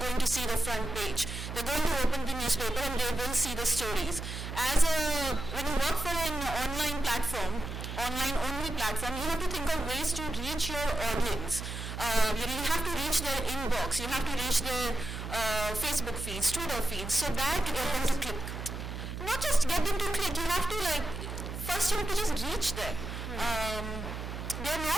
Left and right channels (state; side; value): noise; right; hum, 7 dB below the sound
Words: to see the front page. They're going to open the newspaper and they will see the stories. When you work for an online platform, online only platform, you have to think of ways to reach your audience. You have to reach their inbox, you have to reach their Facebook feeds, Twitter feeds, so that you get them to click. Not just get them to click, you have to first you have to just reach them. They're